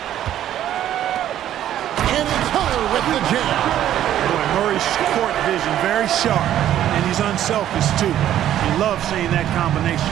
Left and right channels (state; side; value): quieter; left; 11.7 dB